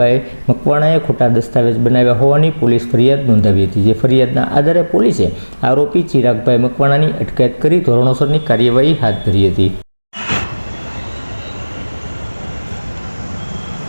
મકવાણાએ ખોટા દસ્તાવેજ બનાવ્યા હોવાની પોલીસ ફરિયાદ નોંધાવી હતી, જે ફરિયાદના આધારે પોલીસે આરોપી ચિરાગભાઈ મકવાણાની અટકાયત કરી ધોરણસરની કાર્યવાહી હાથ ધરી હતી।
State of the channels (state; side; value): inverted; both; correlation -1.00